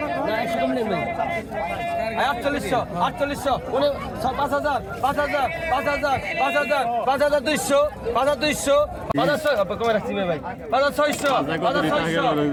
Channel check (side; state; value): both; identical; correlation 1.00